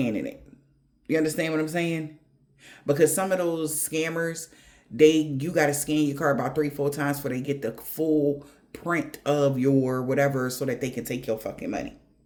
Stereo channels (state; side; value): identical; both; correlation 1.00